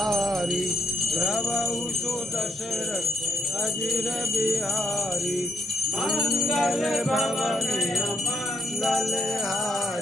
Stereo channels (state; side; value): normal; both; correlation 0.76